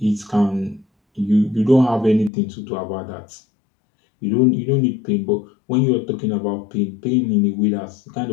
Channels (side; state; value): right; drops out; at 2.3 s